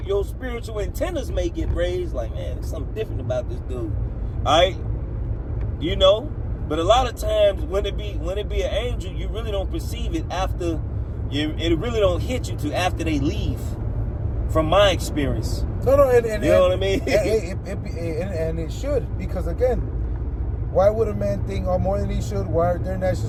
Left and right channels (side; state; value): both; identical; correlation 1.00